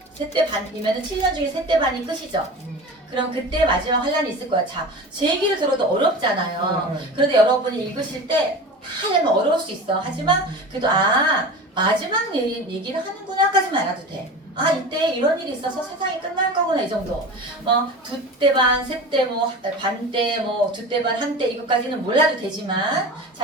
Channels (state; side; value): normal; both; correlation 0.33